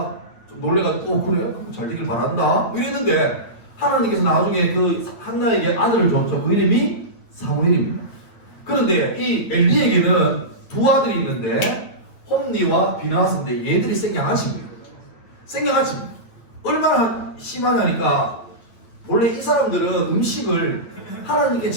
좀 놀래가지고 그래? 잘 되길 바란다 이랬는데 하나님께서 나중에 그 한나에게 아들을 줬죠. 그 이름이 사무엘입니다. 그런데 이 엘리에게는 두 아들이 있는데 홈니와 비나스인데 얘들이 생양아치입니다. 생양아치입니다. 얼마나 심하냐니까 원래 이 사람들은 음식을 하나님께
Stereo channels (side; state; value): right; late; 8.9 ms